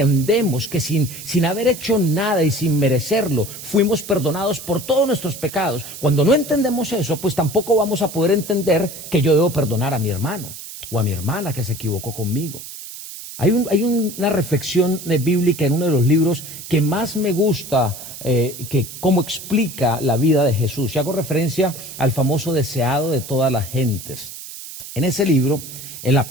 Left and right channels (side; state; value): right; noise; hiss, 12 dB below the sound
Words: que sin haber hecho nada y sin merecerlo, fuimos perdonados por todos nuestros pecados. Cuando no entendemos eso, pues tampoco vamos a poder entender que yo debo perdonar a mi hermano o a mi hermana que se equivocó conmigo. Hay una reflexión bíblica en uno de los libros que más me gusta, que cómo explica la vida de Jesús. Y hago referencia al famoso deseado de todas las gentes. En ese libro, en la